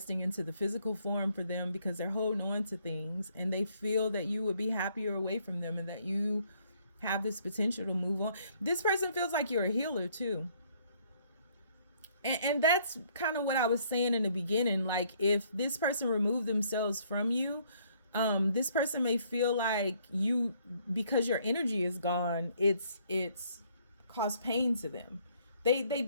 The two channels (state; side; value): inverted; both; correlation -0.65